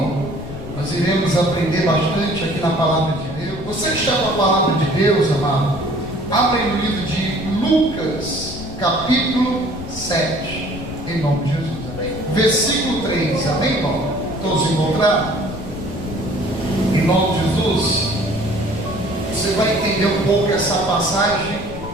Nós iremos aprender bastante aqui na palavra de Deus. Você que está com a palavra de Deus, amado, abre no livro de Lucas, capítulo 7, em nome de Jesus, amém? Versículo 3, amém, irmão? Todos encontraram? Em nome de Jesus, você vai entender um pouco essa passagem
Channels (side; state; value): left; noise; rumble, 12 dB below the sound